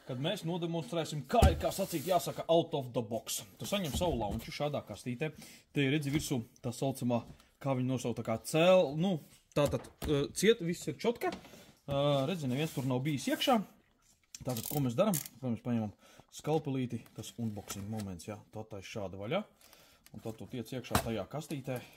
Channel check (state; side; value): identical; both; correlation 1.00